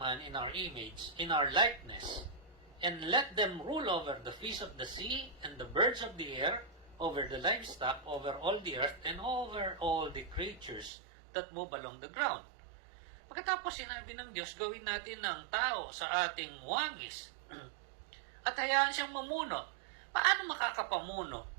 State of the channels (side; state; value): left; drops out; at 10.9 s